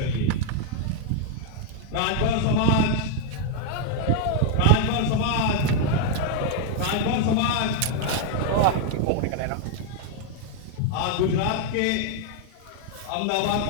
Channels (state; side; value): different; both; correlation 0.01